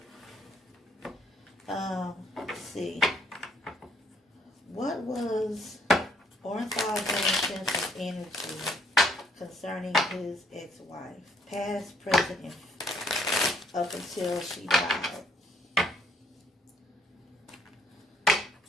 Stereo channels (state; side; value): normal; both; correlation 0.65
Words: Let's see. What was Ornthal Jameson's energy concerning his ex-wife? Past, present, and up until she died.